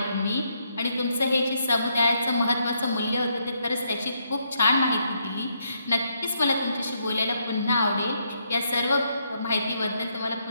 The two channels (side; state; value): both; inverted; correlation -0.76